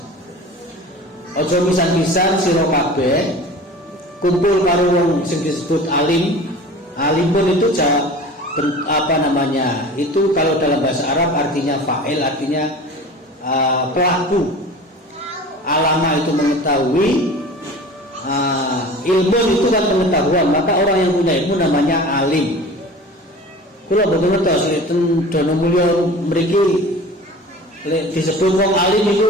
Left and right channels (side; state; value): both; normal; correlation 0.39